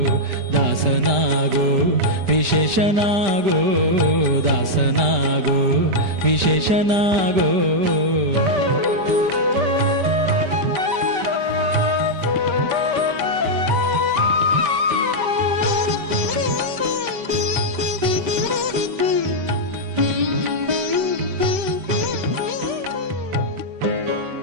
ದಾಸನಾಗೋ ವಿಶೇಷನಾಗೋ, ದಾಸನಾಗೋ ವಿಶೇಷನಾಗೋ.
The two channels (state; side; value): late; left; 5.1 ms